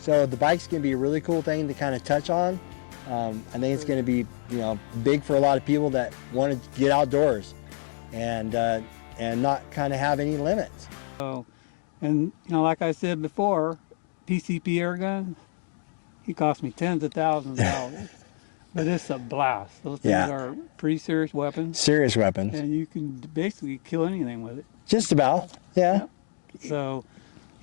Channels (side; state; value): right; silent; digital silence